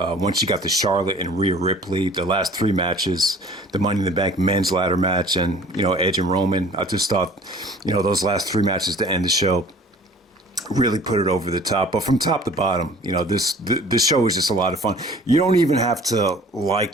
you got the Charlotte and Rhea Ripley, the last three matches, the Money in the Bank men's ladder match, and, Edge and Roman. I just thought, those last three matches to end the show really put it over the top. But from top to bottom, this show is just a lot of fun. You don't even have to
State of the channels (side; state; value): both; normal; correlation 0.49